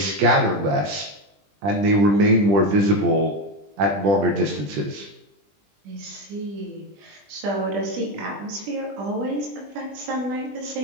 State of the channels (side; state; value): left; late; 20 ms